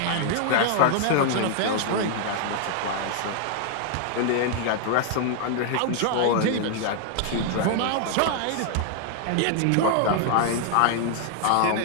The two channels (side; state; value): both; different; correlation 0.00